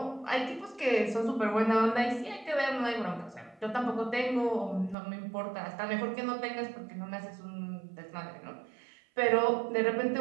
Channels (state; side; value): drops out; left; at 5.0 s